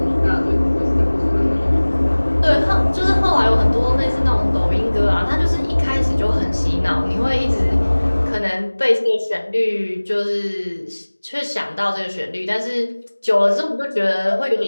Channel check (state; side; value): inverted; both; correlation -1.00